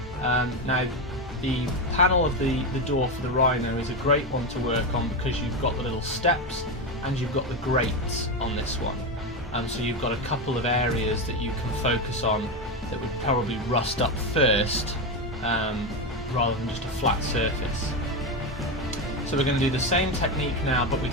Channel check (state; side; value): normal; both; correlation 0.13